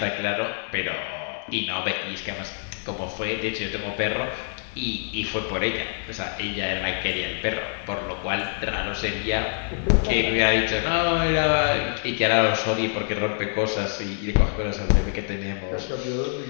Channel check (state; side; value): silent; right; 61 dB below the other